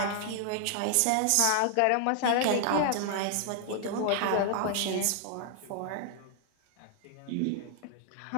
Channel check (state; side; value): different; both; correlation 0.00